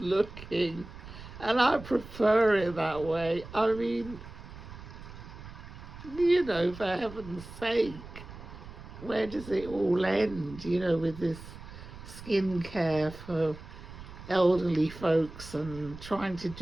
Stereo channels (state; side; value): noise; right; rumble, 14 dB below the sound